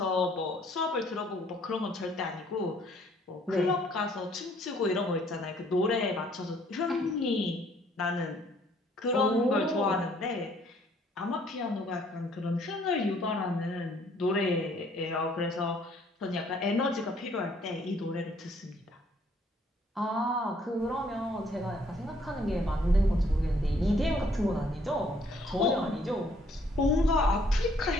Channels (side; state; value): both; normal; correlation 0.63